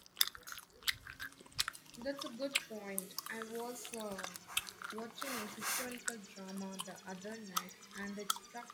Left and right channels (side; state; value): both; identical; correlation 1.00